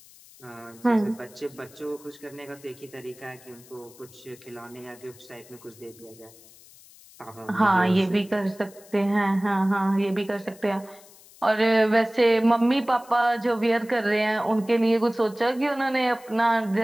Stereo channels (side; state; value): left; noise; hiss, 23 dB below the sound